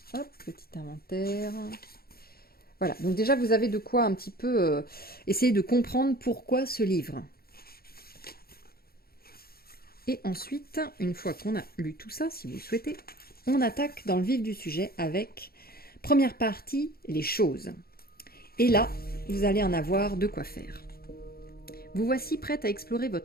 Hop, petit inventaire. Voilà, donc déjà vous avez de quoi un petit peu essayer de comprendre pourquoi ce livre. Et ensuite, une fois qu'on a lu tout ça, si vous le souhaitez, on attaque dans le vif du sujet avec première partie, les choses. Et là, vous allez en avoir de quoi faire. Vous voici prête à explorer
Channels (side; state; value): right; late; 0.44 ms